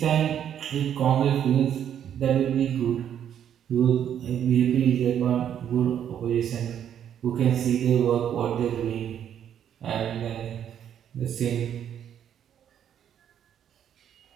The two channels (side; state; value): left; quieter; 9.5 dB